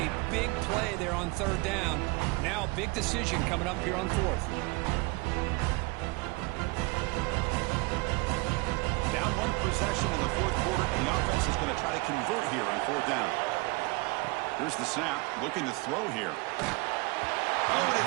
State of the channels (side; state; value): left; quieter; 26.0 dB